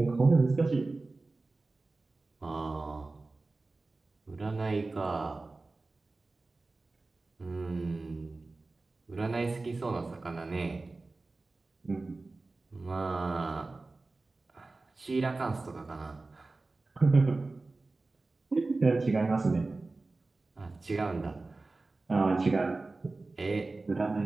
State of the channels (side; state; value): left; quieter; 3.4 dB